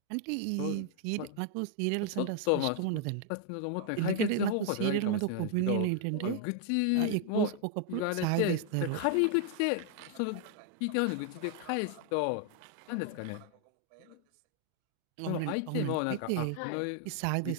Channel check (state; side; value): different; both; correlation 0.00